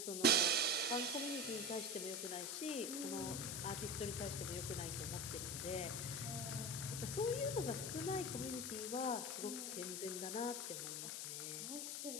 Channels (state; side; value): noise; left; hiss, 3 dB below the sound